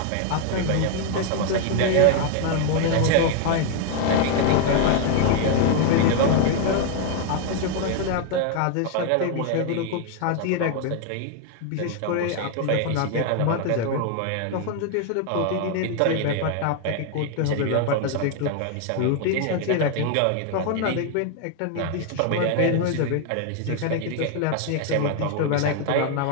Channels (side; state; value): both; different; correlation 0.01